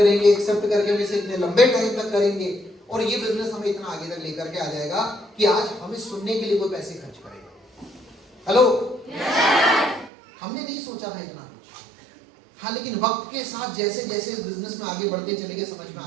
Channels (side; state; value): left; drops out; at 10.1 s